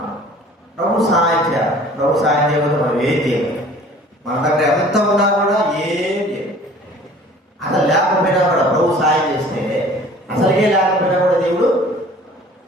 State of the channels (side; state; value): both; normal; correlation 0.49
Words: ప్రభు సహాయం చేయాలి. ప్రభు సహాయం చేయకపోతే మనం ఏం చేయాలి? మన దగ్గర ఎంత ఉన్నా కూడా ఏం చేయాలి. అసలు లేకపోయినా కూడా ప్రభు సహాయం చేస్తే, అసలుగే లేకపోయినా కూడా దేవుడు